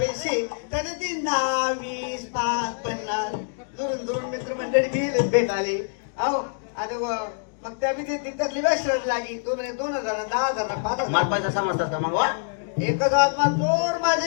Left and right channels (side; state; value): right; silent; digital silence